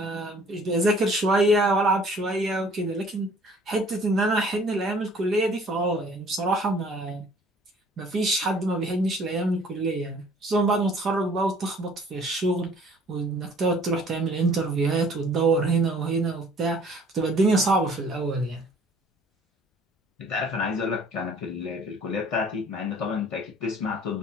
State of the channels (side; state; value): both; normal; correlation 0.54